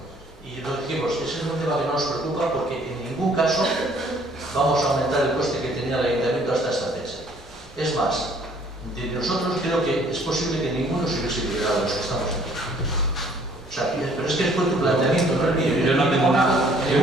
Y lo dijimos, ese es un tema que no nos preocupa porque en ningún caso vamos a aumentar el coste que tenía el ayuntamiento hasta esta fecha. Es más, de nosotros creo que es posible que ninguno se hubiese liberado de los que estamos aquí. O sea, pero es que fue tu planteamiento, no el mío. Yo no tengo nada. En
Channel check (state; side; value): normal; both; correlation 0.59